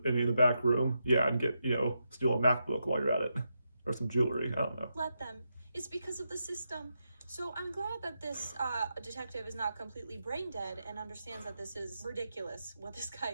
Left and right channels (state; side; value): inverted; both; correlation -0.85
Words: any in the back room? Yeah, and get, steal a MacBook while you're at it. Or some jewelry, I don't know. Let them. It's because of the system. So I'm glad that this detective is not completely brain dead and understands that this is ridiculous, what this guy